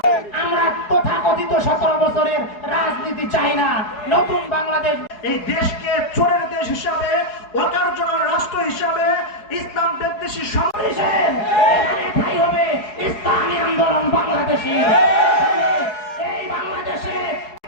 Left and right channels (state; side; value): late; right; 4.7 ms